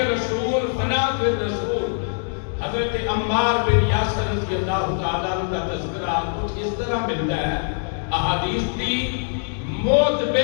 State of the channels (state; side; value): silent; right; digital silence